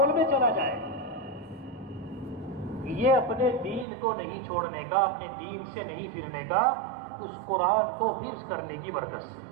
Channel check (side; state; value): left; drops out; at 3.9 s